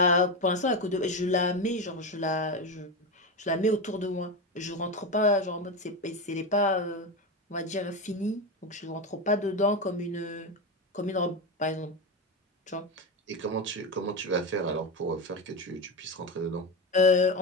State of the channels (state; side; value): normal; both; correlation 0.15